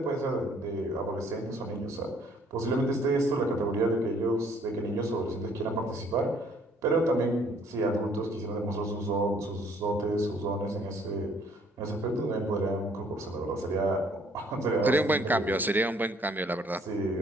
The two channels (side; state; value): both; normal; correlation 0.61